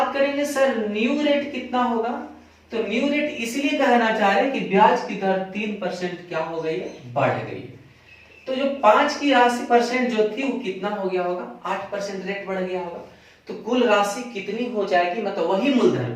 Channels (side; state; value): both; identical; correlation 1.00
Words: करेंगे सर न्यू रेट कितना होगा, तो न्यू रेट इसलिए कहना चाह रहे हैं कि ब्याज की दर 3% क्या हो गई है, बढ़ गई है। तो जो 5 की राशि परसेंट जो थी वो कितना हो गया होगा 8% रेट बढ़ गया होगा। तो कुल राशि कितनी हो जाएगी, मतलब वही मूलधन